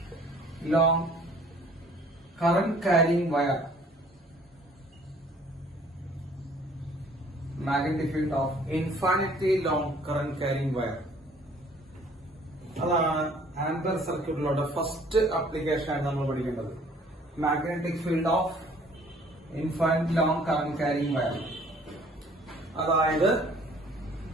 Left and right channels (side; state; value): both; normal; correlation 0.56